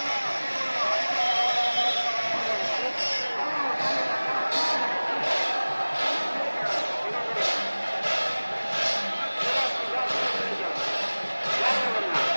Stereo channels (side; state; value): both; inverted; correlation -1.00